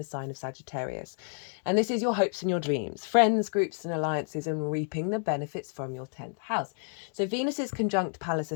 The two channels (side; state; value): right; silent; 58 dB below the other